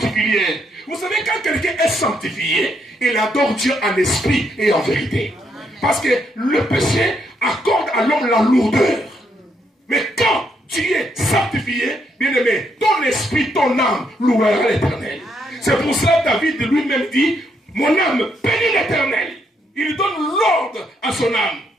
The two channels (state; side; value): normal; both; correlation 0.76